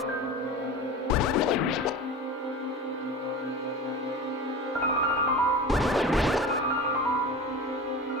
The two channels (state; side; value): normal; both; correlation 0.32